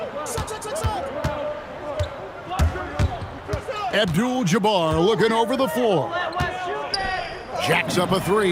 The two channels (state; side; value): identical; both; correlation 1.00